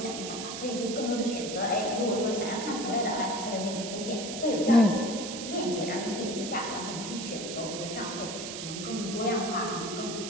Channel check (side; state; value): right; noise; hiss, 7 dB below the sound